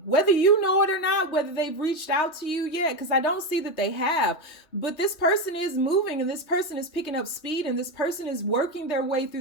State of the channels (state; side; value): late; right; 3.2 ms